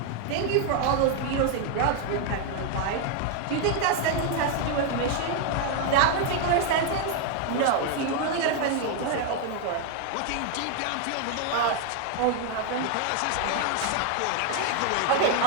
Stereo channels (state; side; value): different; both; correlation 0.00